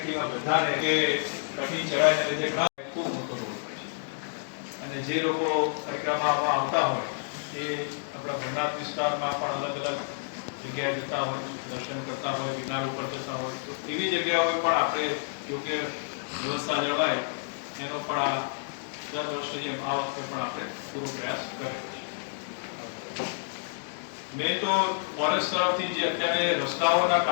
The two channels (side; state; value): right; silent; digital silence